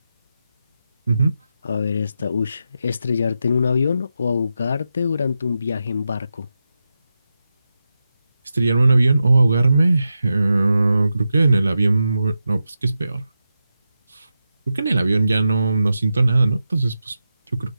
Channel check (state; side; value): inverted; both; correlation -0.89